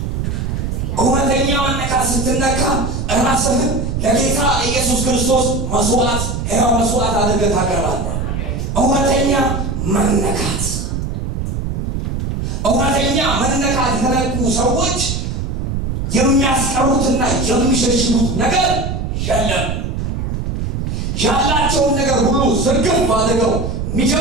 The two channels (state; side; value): noise; right; rumble, 2 dB below the sound